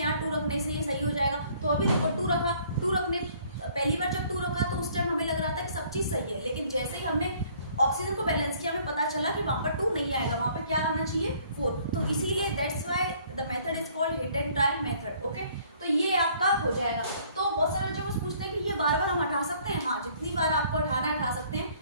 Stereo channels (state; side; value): inverted; both; correlation -0.59